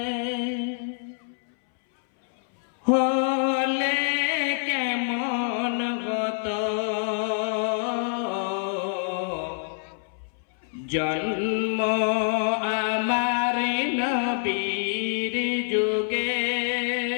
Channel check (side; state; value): right; silent; 61 dB below the other